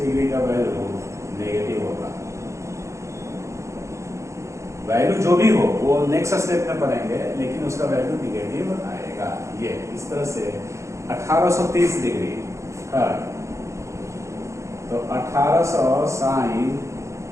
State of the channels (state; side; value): late; left; 0.14 ms